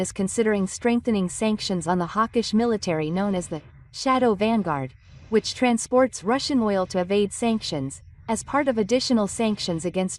considering strengthening sanctions on the hawkish military known as the Shadow Vanguard, which transports Russian oil to evade sanctions, as part of additional sanctions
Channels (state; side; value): identical; both; correlation 1.00